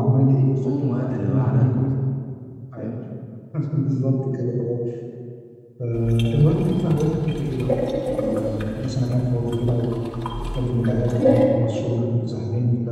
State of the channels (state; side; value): identical; both; correlation 1.00